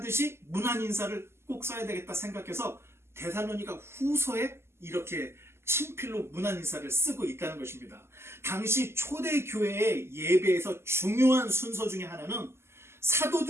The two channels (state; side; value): late; left; 0.12 ms